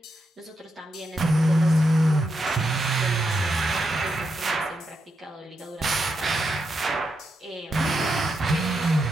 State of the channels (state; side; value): normal; both; correlation 0.84